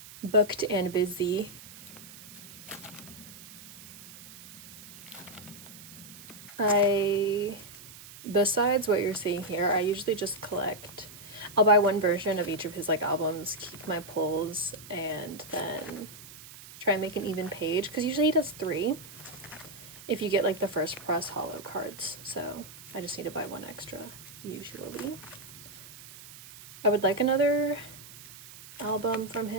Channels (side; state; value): right; noise; hiss, 17 dB below the sound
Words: booked and busy. Besides what you're seeing here, I usually just collect. I'll buy one version of each of his like albums, keep my pulls, and then try and make an even page, because usually he does 3 if you get like the first press hollow cards, so I just need to buy 1 extra usually. I would like another album from